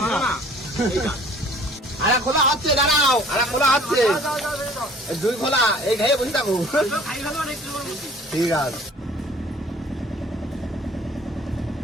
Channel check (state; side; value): normal; both; correlation 0.52